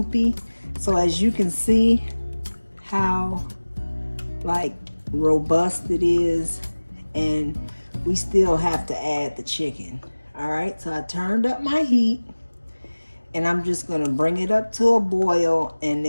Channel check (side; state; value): both; inverted; correlation -1.00